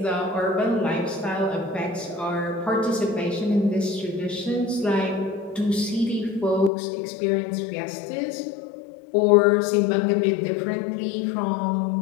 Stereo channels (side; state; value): right; drops out; at 6.7 s